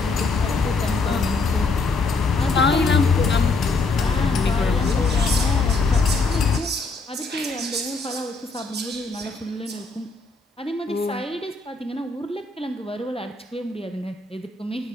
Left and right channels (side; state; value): right; quieter; 3.8 dB